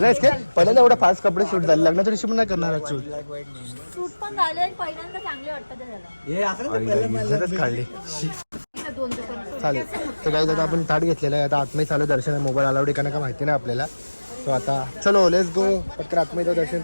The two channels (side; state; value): both; inverted; correlation -1.00